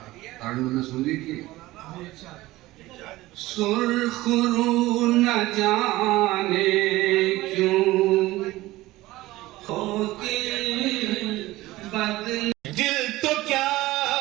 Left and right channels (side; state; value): left; quieter; 18.0 dB